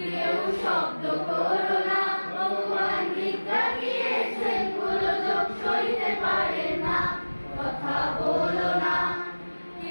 শব্দ করো না ভগবান নিদ্রা গিয়েছেন গোলযোগ সইতে পারে না কথা বলো না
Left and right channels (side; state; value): both; inverted; correlation -1.00